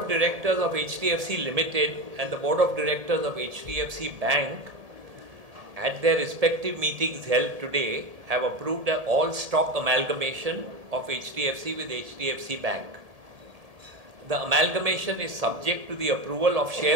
directors of HDFC Ltd and the board of directors of HDFC Bank, at their respective meetings held today, have approved an all-stock amalgamation of HDFC with HDFC Bank. The amalgamation is subject to the approval of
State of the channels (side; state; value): left; late; 1.7 ms